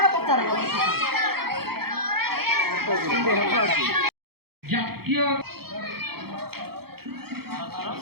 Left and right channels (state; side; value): late; left; 0.95 ms